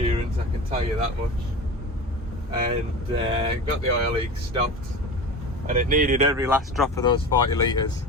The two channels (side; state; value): both; normal; correlation 0.31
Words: I can tell you that much. And got the oil leak stopped, and it needed every last drop of those 40 litres.